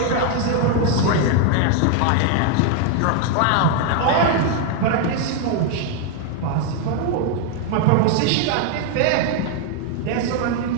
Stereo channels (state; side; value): different; both; correlation 0.00